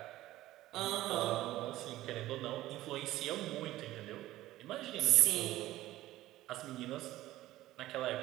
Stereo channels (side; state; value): left; quieter; 15.7 dB